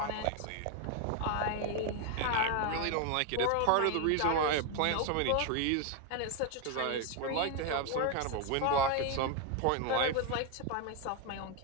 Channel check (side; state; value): both; different; correlation 0.01